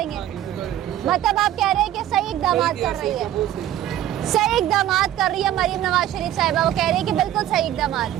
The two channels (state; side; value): quieter; left; 12.4 dB